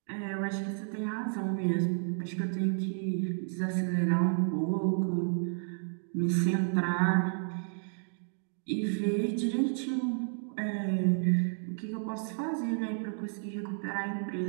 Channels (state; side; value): silent; left; digital silence